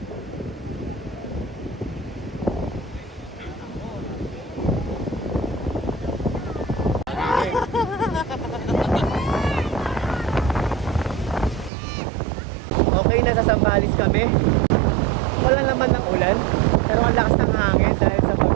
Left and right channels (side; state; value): left; drops out; at 11.7 s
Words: Okay, nasa Sambales kami. Wala naman ng ulan, pero ang lakas ng hangin dahil sa